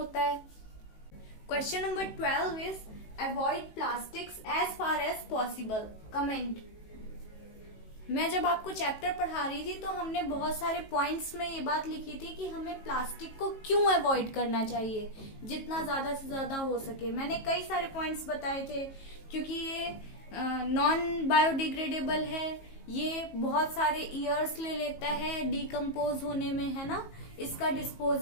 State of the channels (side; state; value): right; late; 18 ms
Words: है। Question number 12 is avoid plastics as far as possible. Comment. मैं जब आपको चैप्टर पढ़ा रही थी तो हमने बहुत सारे पॉइंट्स में ये बात लिखी थी कि हमें प्लास्टिक को क्यों अवॉइड करना चाहिए जितना ज्यादा से ज्यादा हो सके। मैंने कई सारे पॉइंट्स बताए थे, क्योंकि ये नॉन बायोडिग्रेडेबल है, ये बहुत सारे ईयर्स ले लेता है डिकम्पोज होने में, है ना। इसका